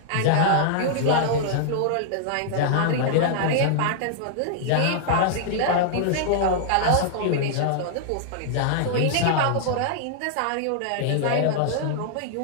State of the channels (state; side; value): different; both; correlation -0.01